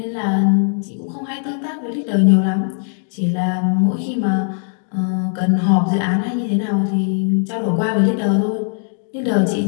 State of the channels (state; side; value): silent; right; digital silence